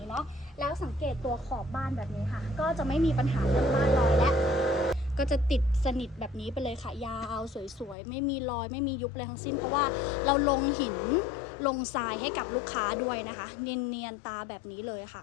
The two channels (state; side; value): drops out; right; at 8.0 s